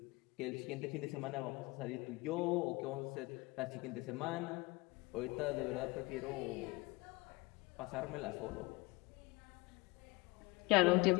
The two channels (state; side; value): quieter; right; 23.8 dB